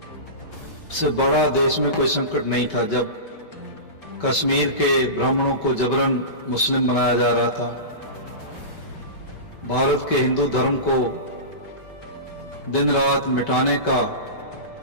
से बड़ा देश में कोई संकट नहीं था। जब कश्मीर के ब्राह्मणों को जबरन मुस्लिम बनाया जा रहा था, भारत के हिंदू धर्म को दिन रात मिटाने का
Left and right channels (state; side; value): late; right; 5.2 ms